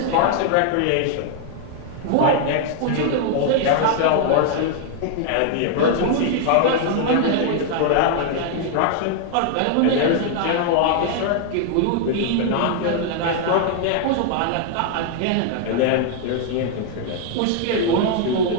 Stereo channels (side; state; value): both; different; correlation 0.00